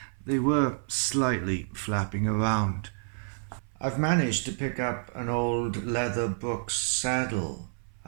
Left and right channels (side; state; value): left; silent; 57 dB below the other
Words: they were slightly flapping around. I've managed to pick up an old leather Brooks saddle